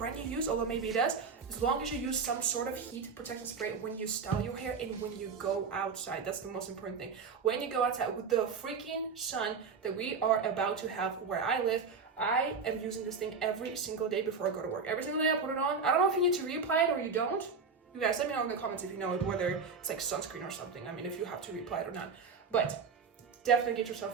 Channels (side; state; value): left; quieter; 5.2 dB